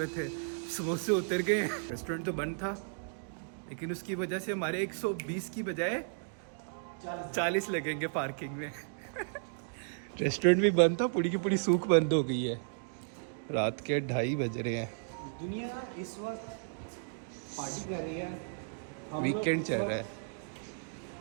थे, समोसे उतर गए। रेस्टोरेंट तो बंद था, लेकिन उसकी वजह से हमारे 120 की बजाय 40 लगेंगे पार्किंग में। रेस्टोरेंट भी बंद था, पूरी की पूरी सूख बंद हो गई है। रात के 2:30 बज रहे हैं। दुनिया इस वक्त पार्टी कर रही है, वीकेंड चल रहा है।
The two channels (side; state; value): left; silent; digital silence